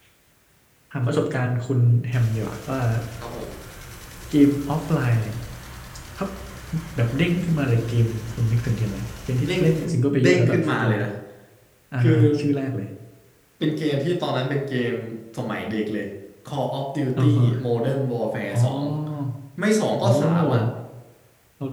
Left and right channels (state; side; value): identical; both; correlation 1.00